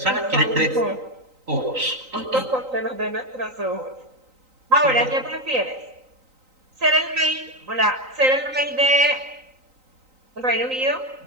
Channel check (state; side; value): late; left; 3.9 ms